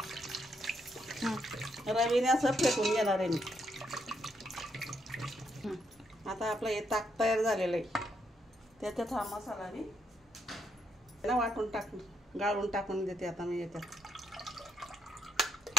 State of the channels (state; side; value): normal; both; correlation 0.76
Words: रवीने असं फेटून घेणार आहे मी। आता आपलं हे ताक तयार झालेलं आहे, त्याच्यात हा मसाला मी वाटून गाळून टाकून देते आता मी याच्यात।